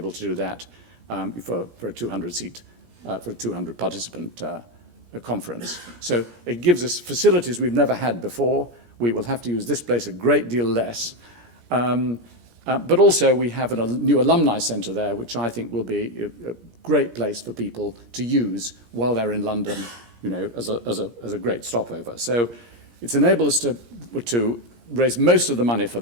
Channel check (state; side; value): late; left; 17 ms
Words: to do that for a 200-seat, for a 200-participant conference. So it gives us facilities we've never had before. We will have to use this place a great deal less. But also we have a new alumni centre there, which I think will be a great place for people to use while they're in London, you know, as a great stopover. So it's enabled us to raise most of the money for